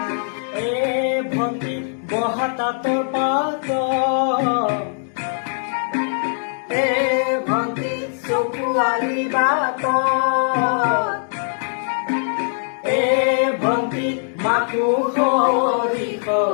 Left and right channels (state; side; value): silent; right; digital silence